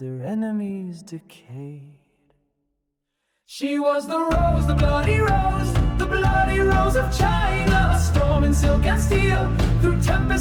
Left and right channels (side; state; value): both; identical; correlation 1.00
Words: enemies decayed. She was the rose, the bloody rose of China. A storm in silk and steel, through